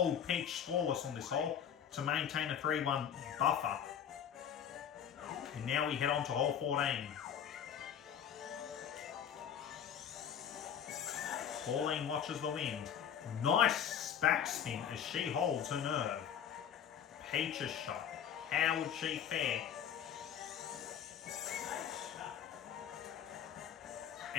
Peach scoreless on this hole to maintain a 3-1 buffer. And now we head on to hole 14. Pauline watches the wind. Nice backspin as she holds her nerve. Peach's shot. How would she fare?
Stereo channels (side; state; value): right; quieter; 8.7 dB